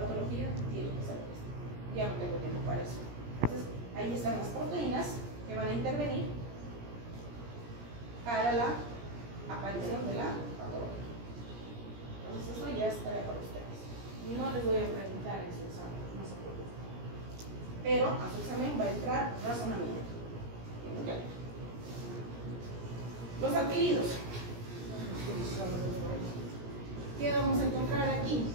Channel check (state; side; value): late; left; 17 ms